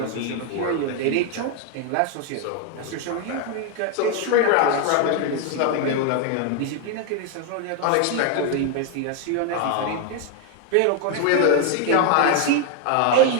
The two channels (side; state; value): both; different; correlation 0.01